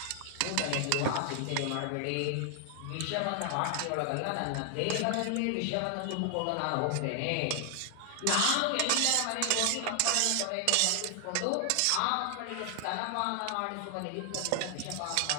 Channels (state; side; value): different; both; correlation 0.00